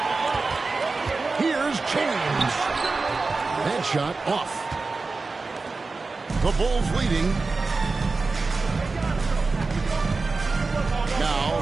Here's James. That shot off. The Bulls leading. Now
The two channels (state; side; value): quieter; left; 3.9 dB